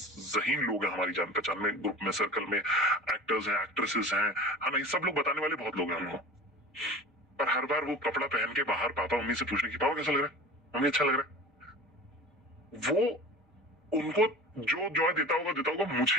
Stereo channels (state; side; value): normal; both; correlation 0.37